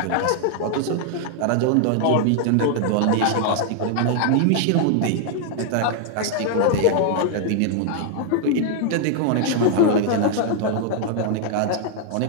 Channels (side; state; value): both; different; correlation 0.00